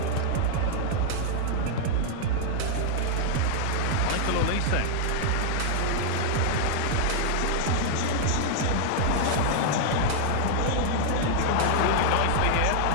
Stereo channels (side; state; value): both; different; correlation -0.01